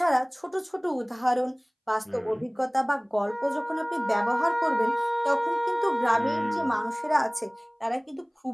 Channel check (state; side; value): identical; both; correlation 1.00